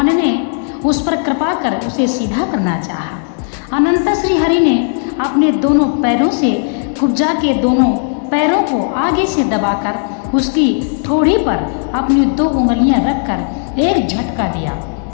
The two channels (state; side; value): silent; right; digital silence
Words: ने उस पर कृपा कर उसे सीधा करना चाहा। अनंत श्री हरि ने अपने दोनों पैरों से कुब्जा के दोनों पैरों को आगे से दबाकर उसकी ठोड़ी पर अपनी दो उंगलियां रखकर एक झटका दिया।